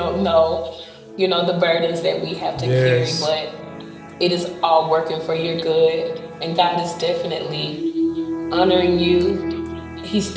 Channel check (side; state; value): both; identical; correlation 1.00